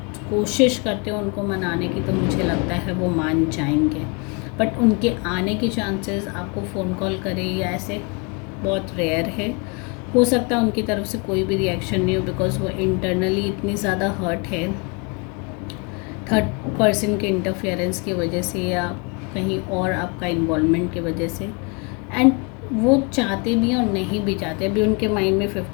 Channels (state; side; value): quieter; right; 31.5 dB